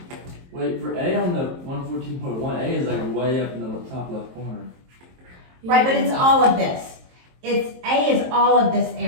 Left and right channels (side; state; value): left; late; 23 ms